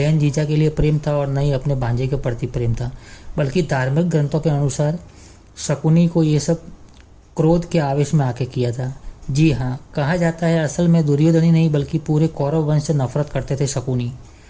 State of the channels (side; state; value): both; identical; correlation 1.00